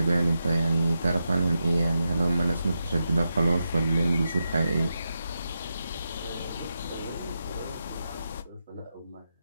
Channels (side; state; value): both; inverted; correlation -0.87